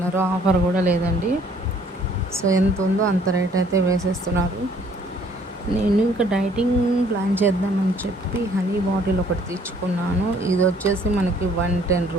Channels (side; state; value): both; normal; correlation 0.60